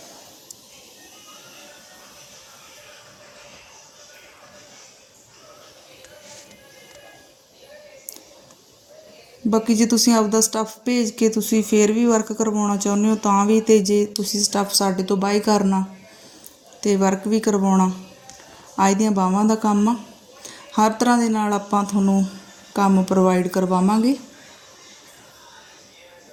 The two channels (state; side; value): identical; both; correlation 1.00